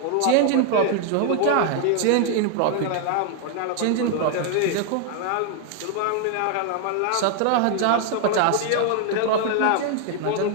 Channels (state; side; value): different; both; correlation 0.00